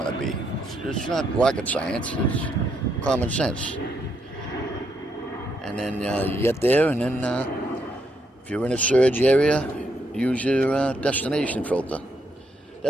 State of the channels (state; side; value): normal; both; correlation 0.77